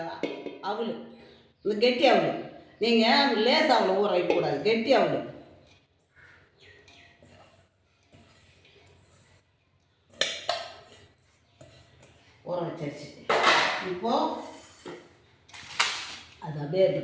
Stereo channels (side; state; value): both; identical; correlation 1.00